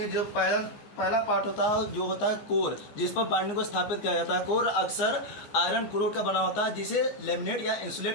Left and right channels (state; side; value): late; right; 14 ms